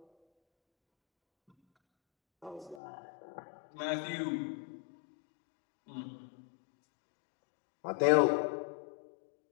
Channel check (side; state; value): right; drops out; at 2.8 s